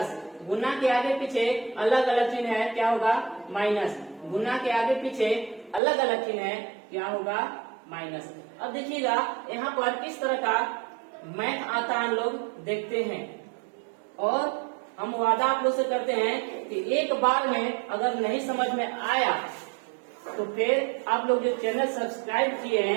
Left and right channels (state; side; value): drops out; left; at 5.8 s